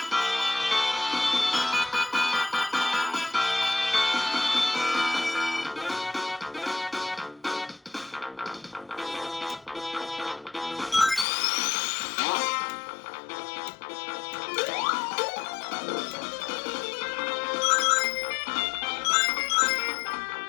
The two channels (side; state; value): right; drops out; at 11.2 s